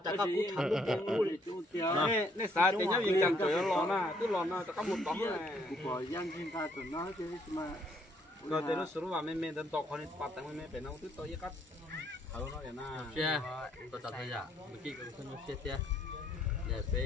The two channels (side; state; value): both; normal; correlation 0.68